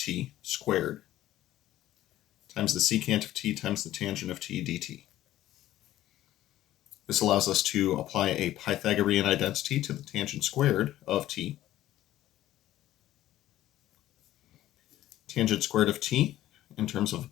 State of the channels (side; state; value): right; quieter; 14.0 dB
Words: squared times the secant of t times the tangent of t dt. This allows us to apply a Pythagorean identity to the tangent squared of t. Tangent squared of t, in terms of a